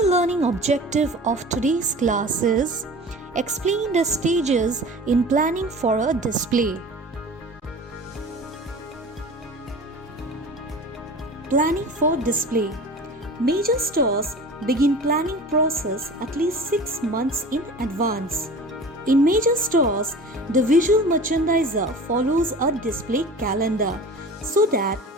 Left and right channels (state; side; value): normal; both; correlation 0.38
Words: learning objective of today's class is explain the stages in planning for a display. Planning for display. Major stores begin planning process at least 6 months in advance. In major stores, the visual merchandiser follows a display calendar so that